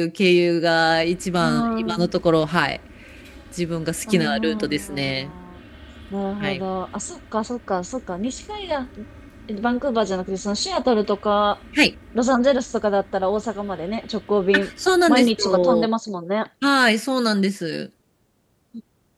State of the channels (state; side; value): identical; both; correlation 1.00